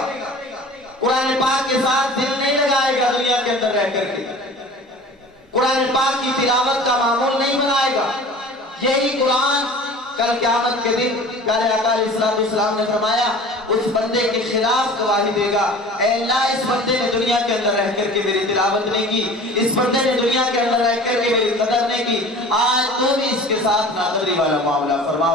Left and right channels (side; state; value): both; normal; correlation 0.42